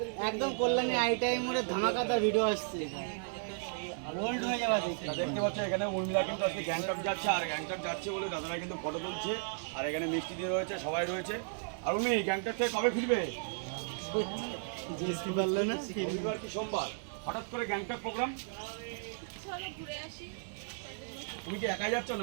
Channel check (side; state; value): left; silent; digital silence